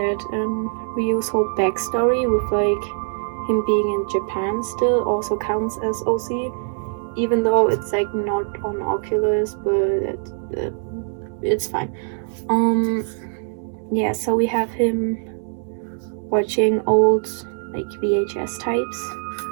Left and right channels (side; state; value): left; silent; 64 dB below the other